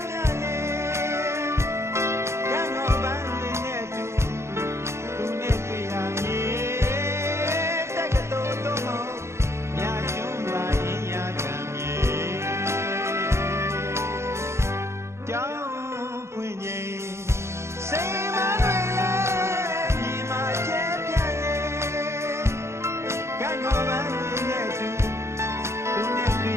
ပြန်နေကံတော်ပန်းလေးနဲ့သူနဲ့တွေ့ရမည်တက်ကတော်တော်မမြာကျွန်းပါရင်ရကံမြေကြောင်းဖွင့်ချိန်စိတ်မတွေလည်းမြေမှာကျဲပြန်နေကံတော်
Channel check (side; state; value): left; late; 0.13 ms